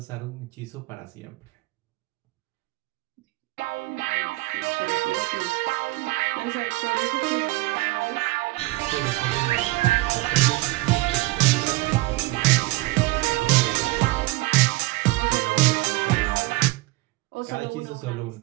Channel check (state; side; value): quieter; left; 21.0 dB